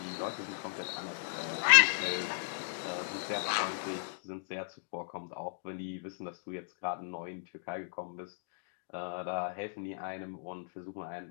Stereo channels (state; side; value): silent; right; digital silence